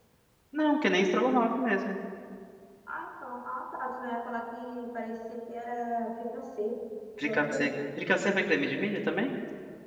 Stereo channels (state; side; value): identical; both; correlation 1.00